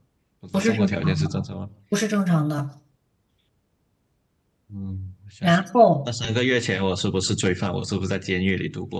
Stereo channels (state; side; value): identical; both; correlation 1.00